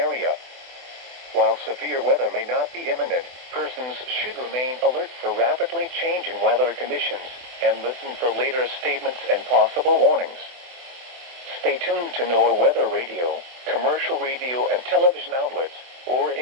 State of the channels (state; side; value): late; left; 24 ms